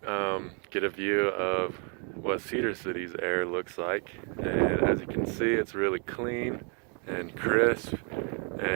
get a view of what Cedar City's air looks like, and as you can see, it's really clean and crisp,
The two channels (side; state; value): left; quieter; 38.5 dB